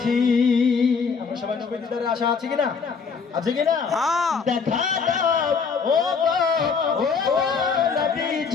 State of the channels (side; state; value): right; quieter; 5.5 dB